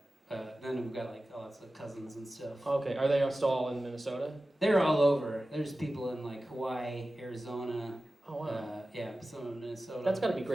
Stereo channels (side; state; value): both; normal; correlation 0.95